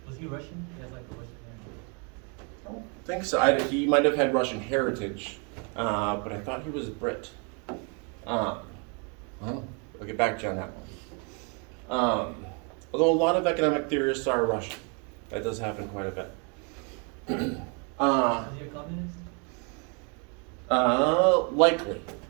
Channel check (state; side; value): quieter; left; 34.6 dB